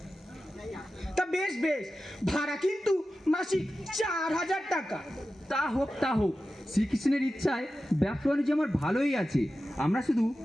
তা বেশ বেশ, ভাড়া কিন্তু মাসিক 4000 টাকা। তা হোক তা হোক, শ্রীকৃষ্ণের ইচ্ছায় ব্যবসা বাণিজ্য আমার ভালোই আছে। আমরা শুধু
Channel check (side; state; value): both; normal; correlation 0.93